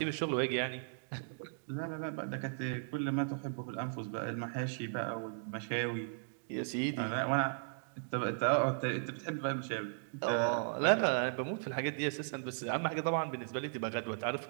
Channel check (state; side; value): silent; left; digital silence